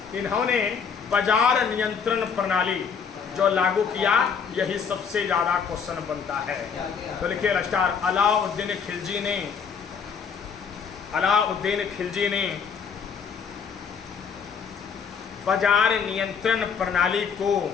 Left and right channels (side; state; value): right; quieter; 6.4 dB